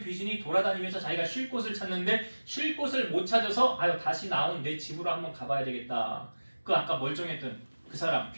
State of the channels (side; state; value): both; inverted; correlation -1.00